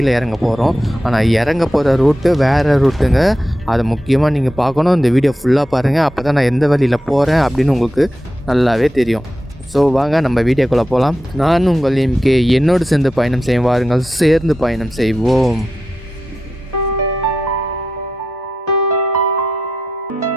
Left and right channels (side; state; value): both; normal; correlation 0.89